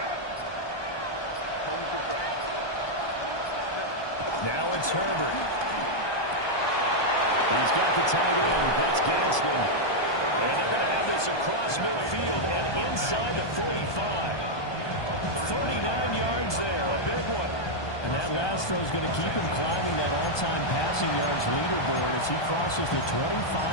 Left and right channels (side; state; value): right; late; 1.2 ms